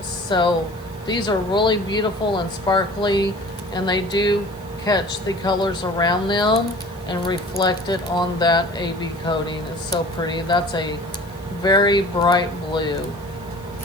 So these are really beautiful and sparkly, and they do catch the colors around them and reflect it on that AB coating. It's so pretty. That's a very bright blue.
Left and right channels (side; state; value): left; noise; hiss, 27 dB below the sound